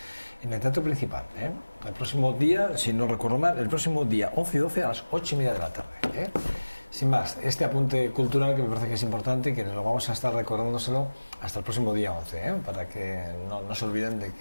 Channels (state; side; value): inverted; both; correlation -1.00